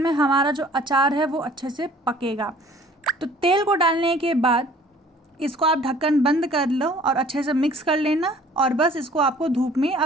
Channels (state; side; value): normal; both; correlation 0.53